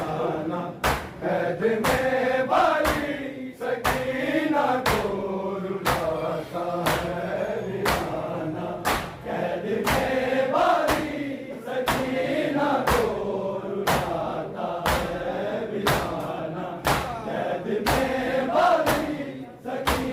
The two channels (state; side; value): identical; both; correlation 1.00